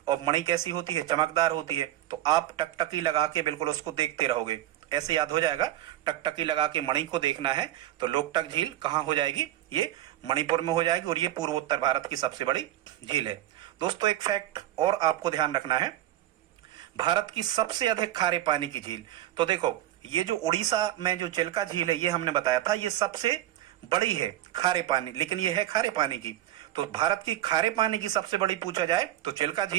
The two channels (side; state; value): left; quieter; 13.6 dB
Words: और मणि कैसी होती है? चमकदार होती है, तो आप टकटकी लगा के बिल्कुल उसको देखते रहोगे, ऐसे याद हो जाएगा। टकटकी लगा के मणि को देखना है तो लोकटक झील कहाँ हो जाएगी? ये मणिपुर में हो जाएगी, और ये पूर्वोत्तर भारत की सबसे बड़ी झील है। दोस्तों एक फैक्ट और आपको ध्यान रखना है, भारत की सबसे अधिक खारे पानी की झील, तो देखो ये जो उड़ीसा में जो चिल्का झील है ये हमने बताया था, ये सबसे बड़ी है खारे पानी, लेकिन ये है खारे पानी की। तो भारत की खारे पानी की सबसे बड़ी पूछा जाए तो चिल्का